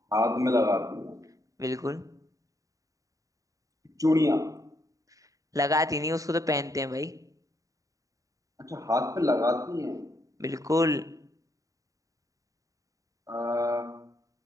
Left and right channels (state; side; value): late; left; 0.16 ms